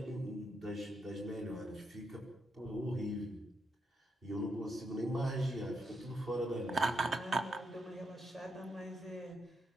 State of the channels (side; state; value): both; normal; correlation 0.81